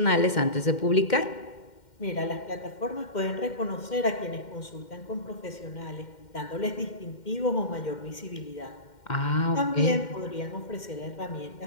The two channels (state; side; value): late; right; 2.1 ms